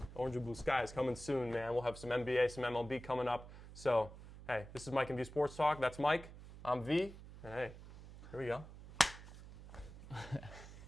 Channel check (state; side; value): noise; right; hum, 15 dB below the sound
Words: Orange and Blue Sky is coming soon, man. We'll have some NBA, some MLB coming up. So, hey, this is Mike and V Sports Talk. That's Mike. I'm V. And hey, here we go.